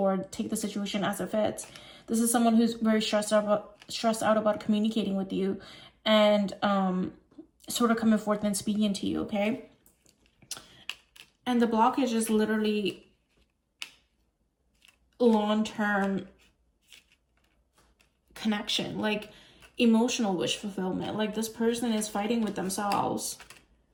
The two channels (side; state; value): both; identical; correlation 1.00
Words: take the situation as it fits. This is someone who's very stressed out about communicating with you and sort of coming forth and speaking to you, okay? And the blockage is literally long-term connection, like emotional wish fulfillment. Like, this person is fighting with themselves,